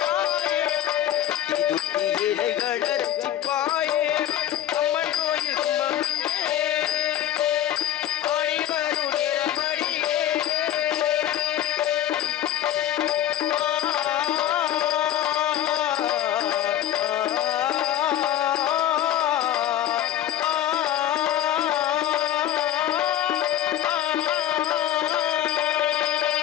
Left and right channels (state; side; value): quieter; right; 11.8 dB